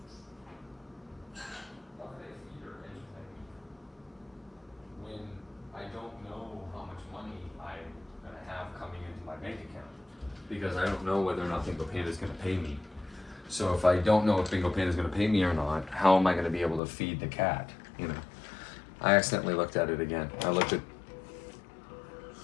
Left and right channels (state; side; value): drops out; right; at 16.8 s